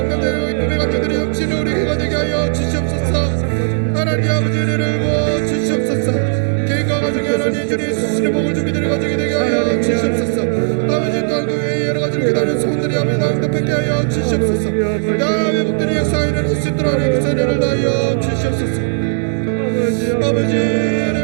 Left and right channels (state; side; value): silent; left; 66 dB below the other